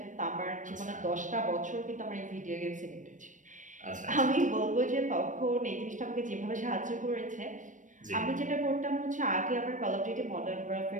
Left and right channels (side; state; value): left; late; 0.37 ms